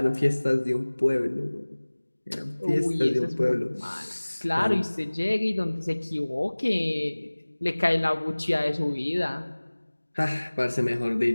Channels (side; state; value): both; inverted; correlation -1.00